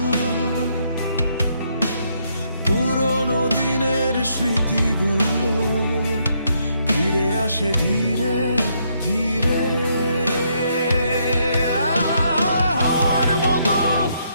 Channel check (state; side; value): inverted; both; correlation -0.74